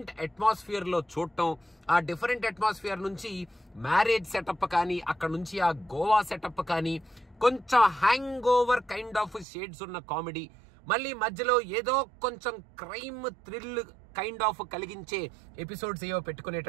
అట్మాస్ఫియర్ లో చూడటం, ఆ డిఫరెంట్ అట్మాస్ఫియర్ నుంచి మ్యారేజ్ సెటప్ కానీ అక్కడ నుంచి ఆ గోవా సెటప్ కానీ కొంచెం hang over kind of shades ఉన్న కామెడీ, మళ్ళీ మధ్యలో ఏదో కొంచెం క్రైమ్ థ్రిల్ కైండ్ ఆఫ్ కలిగించే ఎపిసోడ్స్ ఏవో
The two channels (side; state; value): left; drops out; at 9.5 s